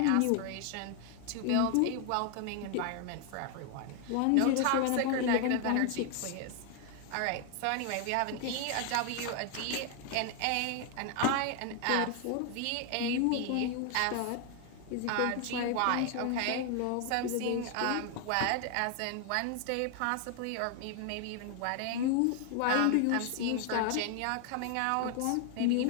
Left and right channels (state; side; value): different; both; correlation 0.00